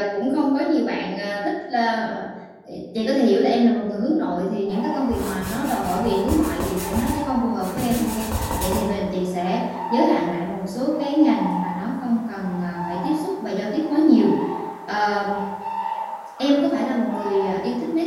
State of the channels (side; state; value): both; identical; correlation 1.00